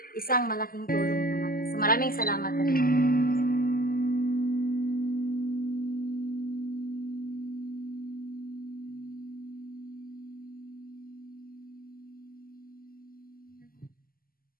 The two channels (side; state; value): right; late; 0.42 ms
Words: isang malaking tulong naman. So maraming salamat.